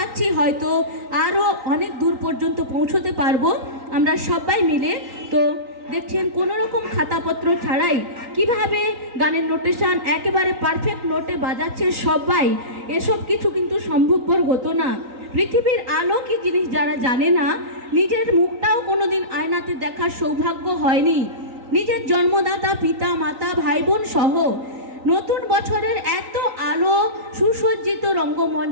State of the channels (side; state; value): left; late; 3.9 ms